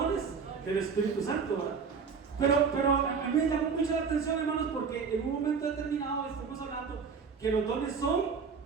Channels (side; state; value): left; quieter; 5.7 dB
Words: del Espíritu Santo, ¿verdad? Pero a mí me llamó mucho la atención, hermanos, porque en un momento determinado estamos hablando que los dones